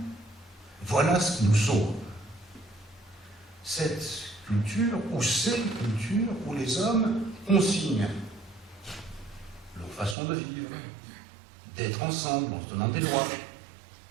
voilà ce qui nous sauve. Cette culture, ou ces cultures, où les hommes consignent leur façon de vivre, d'être ensemble en se donnant des lois,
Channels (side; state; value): left; drops out; at 10.2 s